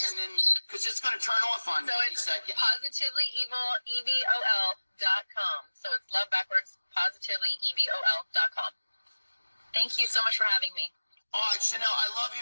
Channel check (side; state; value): both; inverted; correlation -1.00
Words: and then, because it's going to turn off on me any second. PositivelyEvol.com. So it's love backwards, PositivelyEvol.com. Thank you so much for having me. All right, Chanel, I love you,